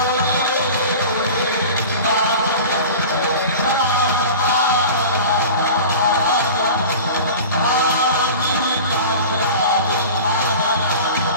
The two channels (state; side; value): inverted; both; correlation -0.36